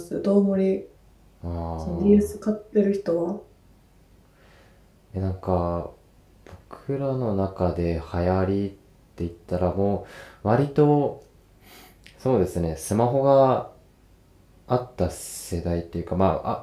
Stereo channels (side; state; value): both; identical; correlation 1.00